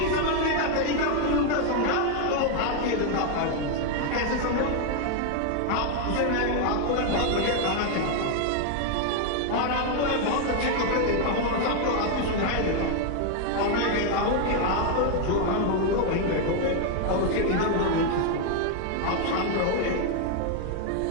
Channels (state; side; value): different; both; correlation 0.00